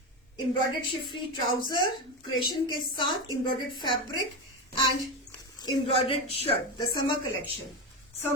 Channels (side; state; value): both; normal; correlation 0.17